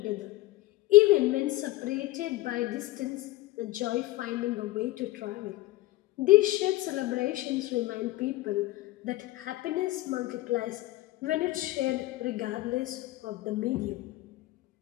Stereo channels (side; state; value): right; quieter; 18.0 dB